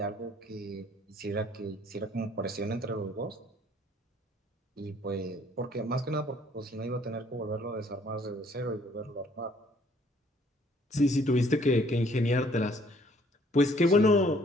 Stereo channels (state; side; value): normal; both; correlation 0.61